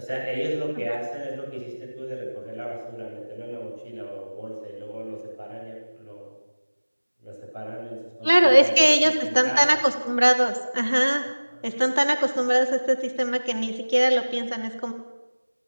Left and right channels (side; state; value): both; inverted; correlation -1.00